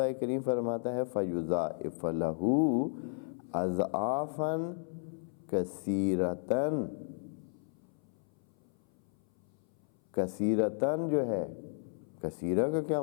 کریم فرماتا ہے فَيُضَاعِفَ لَهُ أَضْعَافًا كَثِيرَةً۔ کثیرتاً جو ہے، کثیرہ کا کیا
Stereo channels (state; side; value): silent; right; 55 dB below the other